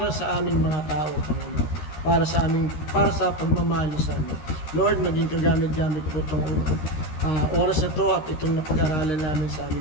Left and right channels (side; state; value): right; late; 13 ms